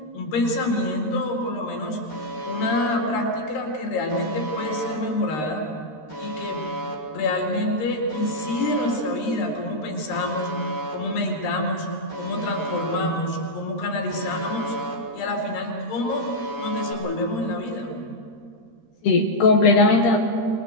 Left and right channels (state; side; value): late; right; 13 ms